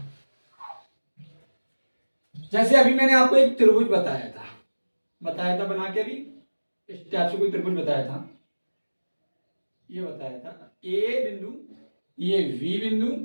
जैसे अभी मैंने आपको एक त्रिभुज बताया था बना के, अभी इस टाइप से कोई त्रिभुज बताया था, ये बताया था ए बिंदु, ये बी बिंदु,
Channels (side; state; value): both; inverted; correlation -1.00